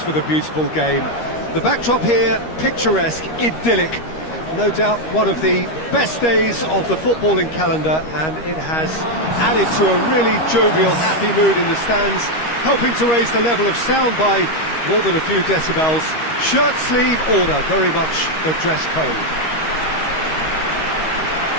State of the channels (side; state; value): right; late; 13 ms